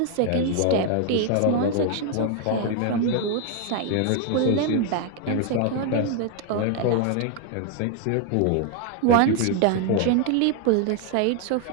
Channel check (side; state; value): both; different; correlation 0.00